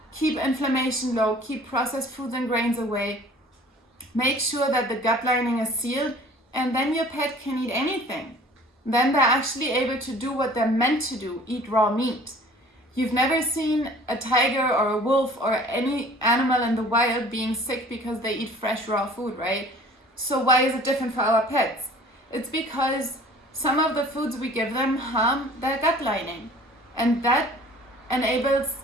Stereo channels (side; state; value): both; normal; correlation 0.49